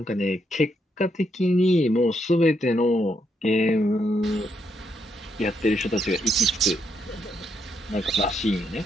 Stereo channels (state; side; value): normal; both; correlation 0.78